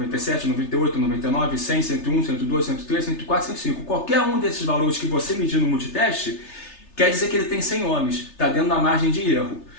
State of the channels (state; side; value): late; right; 3.3 ms